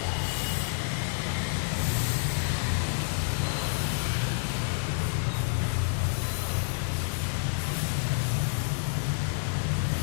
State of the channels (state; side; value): silent; right; 59 dB below the other